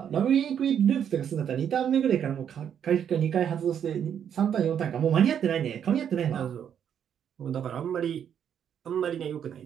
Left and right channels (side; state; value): left; quieter; 8.7 dB